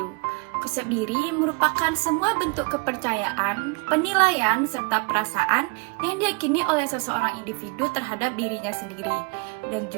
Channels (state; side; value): quieter; left; 30.6 dB